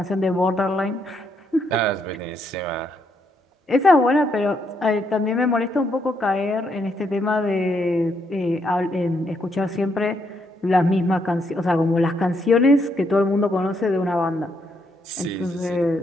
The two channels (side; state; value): both; normal; correlation 0.75